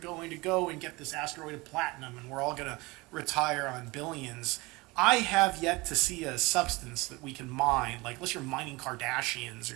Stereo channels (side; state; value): left; quieter; 23.5 dB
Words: to go and get this asteroid of platinum and we're all going to retire on billions. I have yet to see a substance that we can mine, like unless you're mining Kardashians